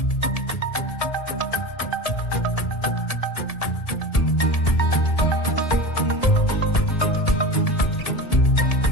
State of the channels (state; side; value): late; right; 1.7 ms